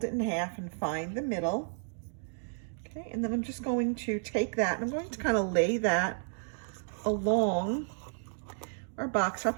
it in half and find the middle. Okay, and then I'm just going to take that and I'm going to kind of lay that along our box top.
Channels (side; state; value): left; silent; digital silence